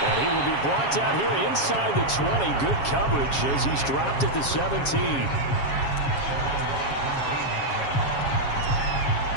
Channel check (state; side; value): late; right; 7.3 ms